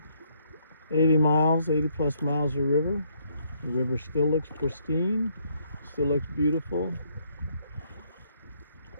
80 miles, 80 plus miles of river. The river still looks pristine, still looks beautiful,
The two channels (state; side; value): inverted; both; correlation -0.70